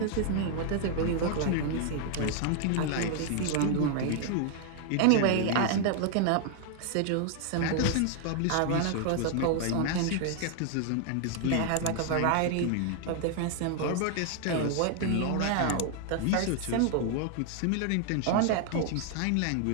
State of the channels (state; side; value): different; both; correlation 0.00